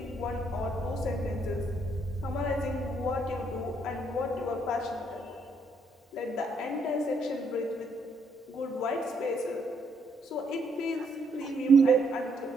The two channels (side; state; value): both; normal; correlation 0.72